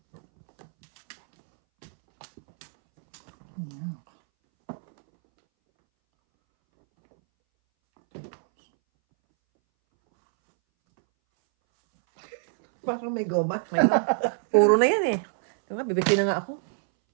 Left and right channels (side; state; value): left; silent; 61 dB below the other